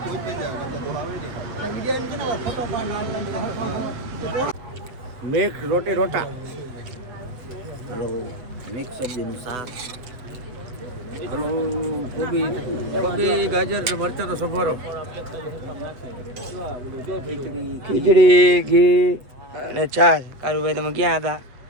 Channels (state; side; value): late; left; 7.9 ms